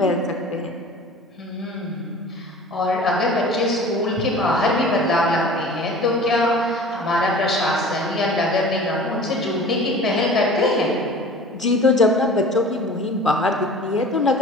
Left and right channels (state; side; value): normal; both; correlation 0.42